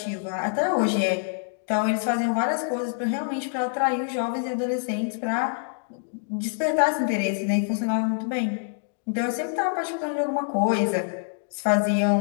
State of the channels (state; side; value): silent; right; digital silence